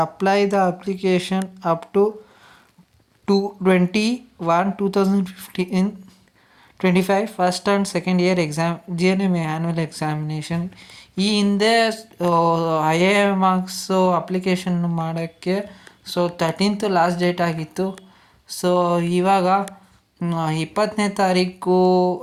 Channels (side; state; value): both; identical; correlation 1.00